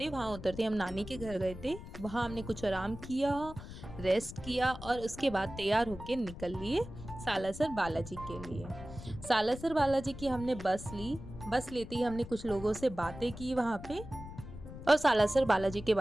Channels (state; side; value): noise; left; rumble, 12 dB below the sound